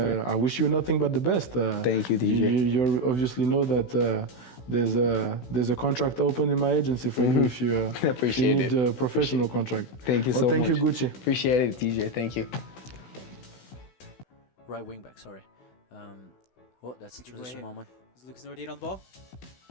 wish you nothing but the best. Thank you, DJ. You obviously know that there's a contract open in my agency for you if you need a professional contract. Thank you so much. Thank you, Gauthier. Appreciate it, DJ. Thank you. Right wing back, sorry. That's a transition moment. Is Lucas Nordier on the ball?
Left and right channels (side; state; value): right; late; 16 ms